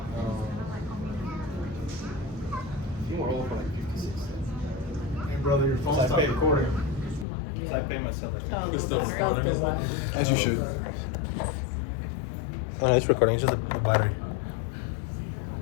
I think we're all for like 56. Hey, brother, your phone So I stopped paid. recording. So I pay myself like It's still recording, isn't it? As you should. Oh, no, it's recording. It's just the battery.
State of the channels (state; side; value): drops out; right; at 7.2 s